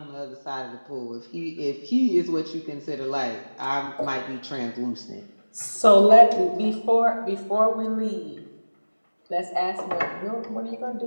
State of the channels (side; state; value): both; inverted; correlation -1.00